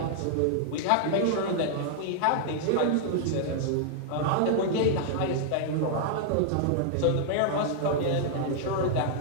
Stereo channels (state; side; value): different; both; correlation -0.01